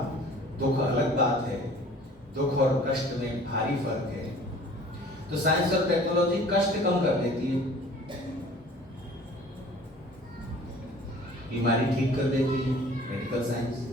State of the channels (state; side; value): normal; both; correlation 0.48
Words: दुख अलग बात है, दुख और कष्ट में भारी फर्क है। तो साइंस और टेक्नोलॉजी कष्ट कम कर देती है, बीमारी ठीक कर देती है, मेडिकल साइंस